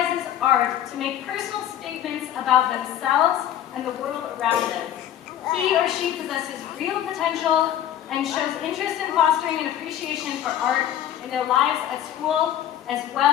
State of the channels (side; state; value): right; quieter; 11.1 dB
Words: art to make personal statements about themselves and the world around them. He or she possesses real potential and shows interest in fostering an appreciation for art in their lives at school as